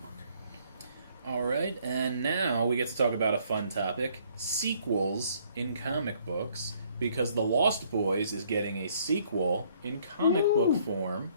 All right, and now we get to talk about a fun topic: sequels in comic books. Because The Lost Boys is getting a sequel in comic book form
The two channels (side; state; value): both; inverted; correlation -0.64